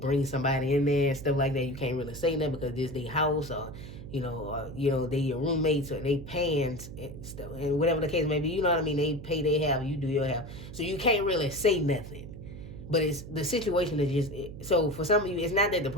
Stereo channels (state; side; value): noise; right; hum, 12 dB below the sound